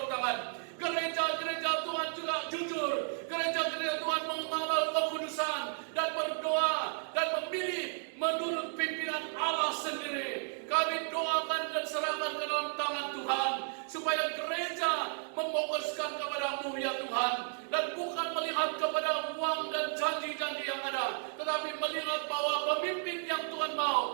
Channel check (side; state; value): left; silent; 56 dB below the other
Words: tangan. Gereja-gereja Tuhan juga jujur. Gereja-gereja Tuhan mengamal kekudusan dan berdoa dan memilih menurut pimpinan Allah sendiri. Kami doakan dan serahkan ke dalam tangan Tuhan, supaya gereja memfokuskan kepada-Mu ya Tuhan, dan bukan melihat kepada uang dan janji-janji yang ada, tetapi melihat bahwa pemimpin yang Tuhan